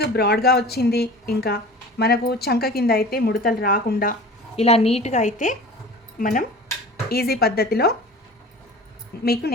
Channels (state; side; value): normal; both; correlation 0.40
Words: బ్రాడ్గా వచ్చింది. ఇంకా మనకు చంక కింద అయితే ముడతలు రాకుండా ఇలా నీట్గా అయితే మనం ఈజీ పద్ధతిలో మీకు